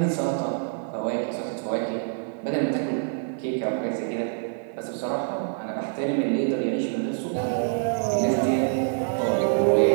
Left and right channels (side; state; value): left; silent; 61 dB below the other